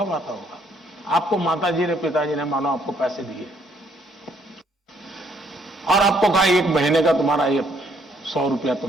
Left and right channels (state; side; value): normal; both; correlation 0.68